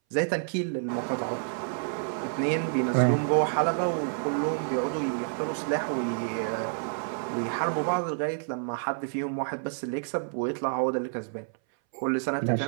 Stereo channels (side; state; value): left; silent; 59 dB below the other